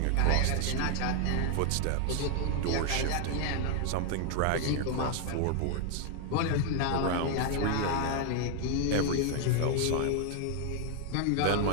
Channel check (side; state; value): both; different; correlation 0.00